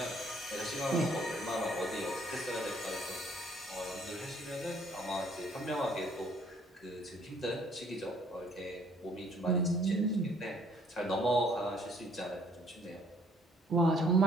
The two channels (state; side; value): normal; both; correlation 0.62